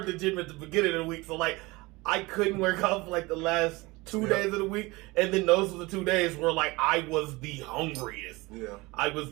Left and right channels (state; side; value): quieter; left; 22.8 dB